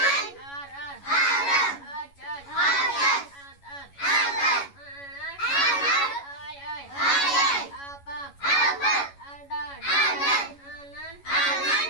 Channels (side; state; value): right; late; 11 ms